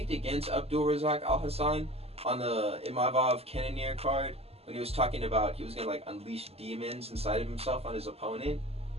against Abdul Razak Al Hassan on the Imavov Cannonier card when he was talking about he was going to unleash demons inside of himself on his opponent.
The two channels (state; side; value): late; left; 0.29 ms